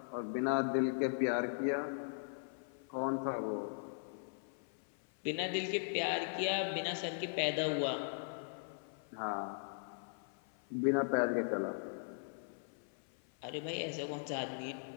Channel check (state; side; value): silent; right; 52 dB below the other